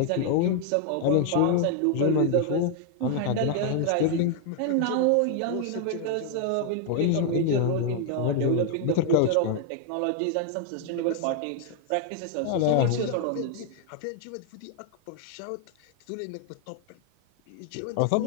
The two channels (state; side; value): different; both; correlation 0.00